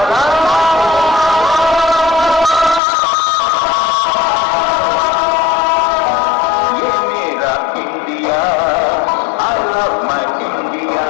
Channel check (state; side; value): drops out; right; at 2.8 s